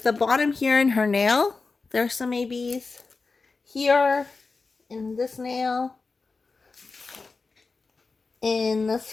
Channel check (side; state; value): right; quieter; 4.1 dB